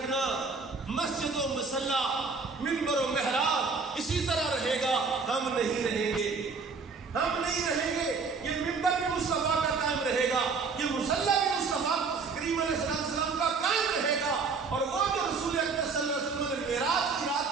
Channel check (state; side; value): quieter; left; 4.7 dB